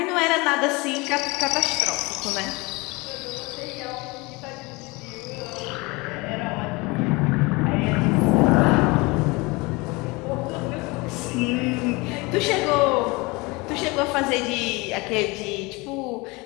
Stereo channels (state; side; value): quieter; right; 25.1 dB